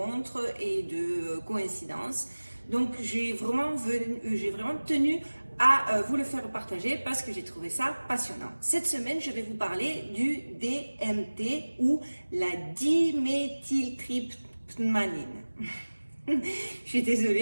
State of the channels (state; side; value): inverted; both; correlation -1.00